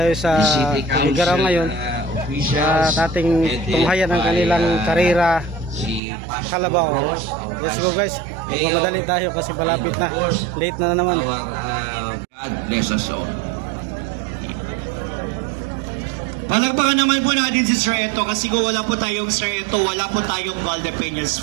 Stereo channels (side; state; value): left; drops out; at 6.0 s